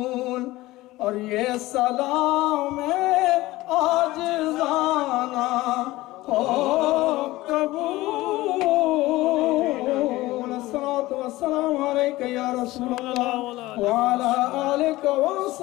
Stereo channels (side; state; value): right; quieter; 18.3 dB